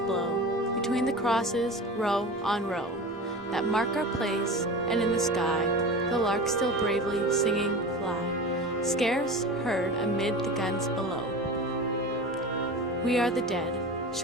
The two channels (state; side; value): normal; both; correlation 0.31